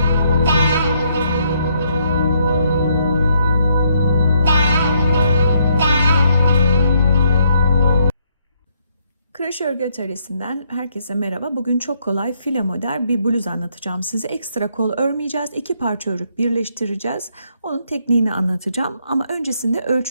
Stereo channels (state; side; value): inverted; both; correlation -0.72